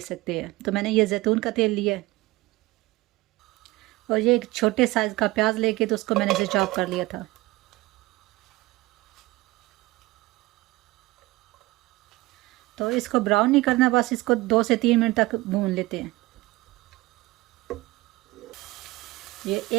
सकते हैं। तो मैंने ये जैतून का तेल लिया है और ये एक छोटे साइज़ का प्याज लेके तो उसको मैंने इसे चॉप कर लिया था। तो इसको ब्राउन नहीं करना, बस इसको 2 से 3 मिनट तक भून लेते हैं। ये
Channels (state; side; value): quieter; left; 20.3 dB